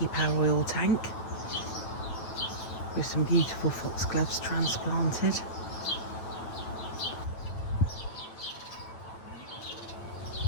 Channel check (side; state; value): right; late; 9.3 ms